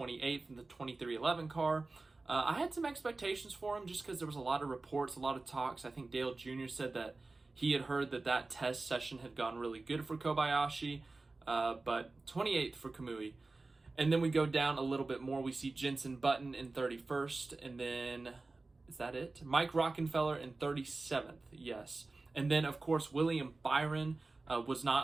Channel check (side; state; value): left; quieter; 3.4 dB